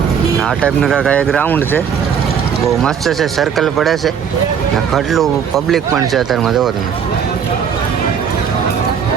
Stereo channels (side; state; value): left; quieter; 7.5 dB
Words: આ ટાઈપનું કાંઈ એક ગ્રાઉન્ડ છે. બહુ મસ્ત છે. સર્કલ પડે છે ને કેટલું પબ્લિક પણ છે અત્યારમાં. જુઓ તમે.